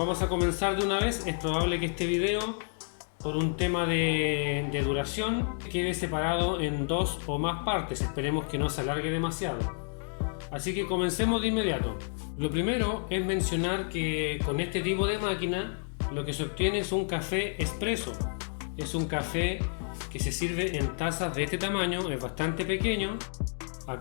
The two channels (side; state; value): right; silent; 58 dB below the other